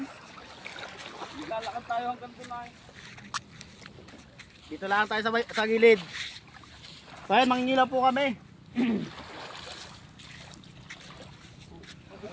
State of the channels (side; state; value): both; identical; correlation 1.00